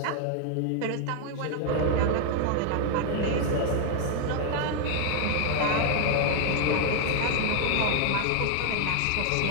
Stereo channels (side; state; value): both; different; correlation 0.00